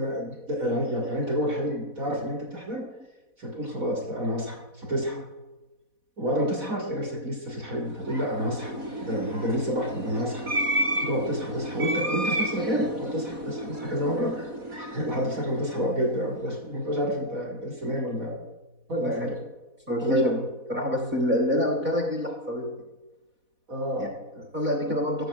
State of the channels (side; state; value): left; late; 4.1 ms